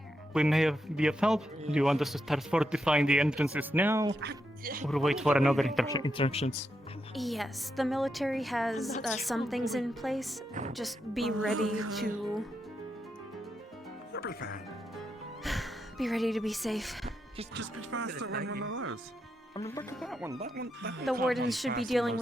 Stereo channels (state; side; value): normal; both; correlation 0.83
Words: we may be of help, do you want us to start fortifying the entrances now, or wait for another instructions? Yes, the military has some things in place. Just be ready to be ready to be safe. Just be faster on one of those. I mean, look at that one. That one. The wardens should be dealing